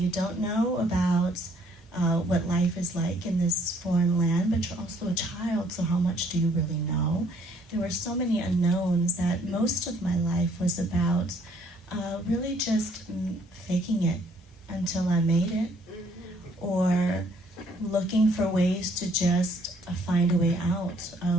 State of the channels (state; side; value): normal; both; correlation 0.63